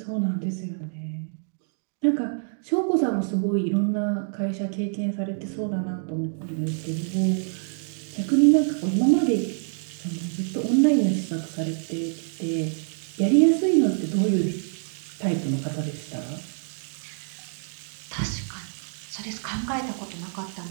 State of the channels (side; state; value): left; silent; 61 dB below the other